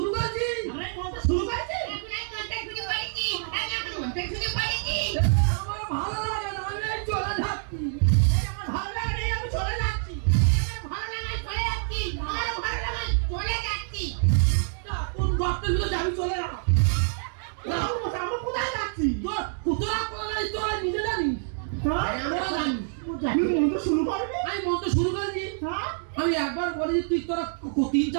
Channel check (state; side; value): silent; left; digital silence